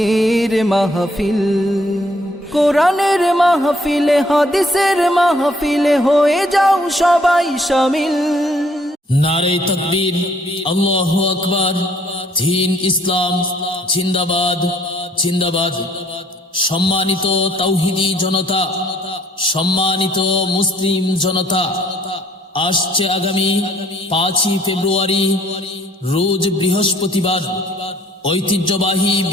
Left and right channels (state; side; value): normal; both; correlation 0.62